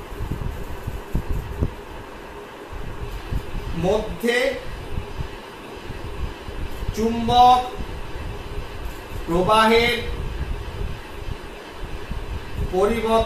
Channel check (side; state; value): both; identical; correlation 1.00